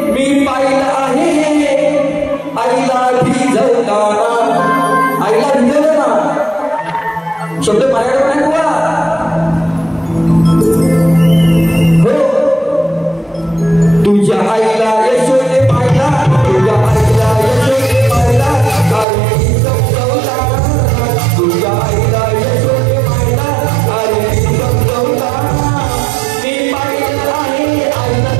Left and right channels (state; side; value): drops out; left; at 19.1 s